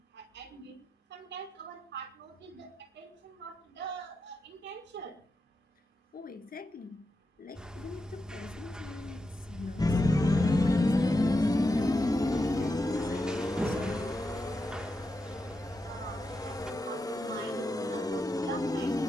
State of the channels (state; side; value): normal; both; correlation 0.87